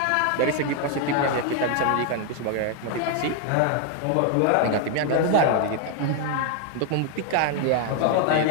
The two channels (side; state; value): both; different; correlation 0.00